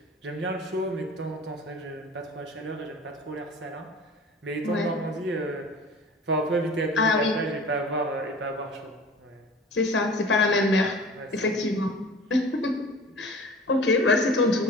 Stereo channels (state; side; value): normal; both; correlation 0.42